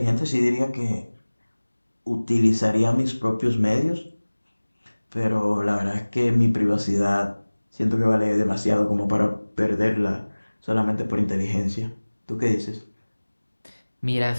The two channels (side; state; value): both; inverted; correlation -1.00